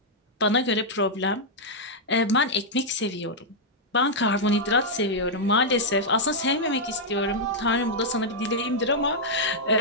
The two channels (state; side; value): normal; both; correlation -0.05